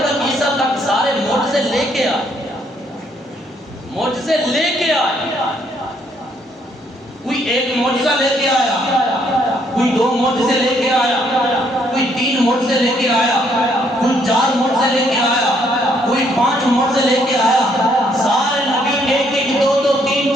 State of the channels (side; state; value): both; normal; correlation 0.69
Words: کر عیسیٰ تک سارے معجزے لے کے آئے، معجزے لے کے آئے۔ کوئی ایک معجزہ لے کے آیا، کوئی دو معجزے لے کے آیا، کوئی تین معجزے لے کے آیا، کوئی چار معجزے لے کے آیا، کوئی پانچ معجزے لے کے آیا۔ سارے نبی ایک ایک دو دو تین